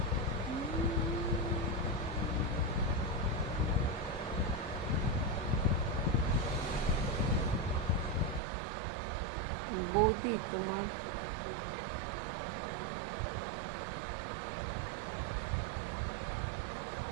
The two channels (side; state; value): left; drops out; at 8.4 s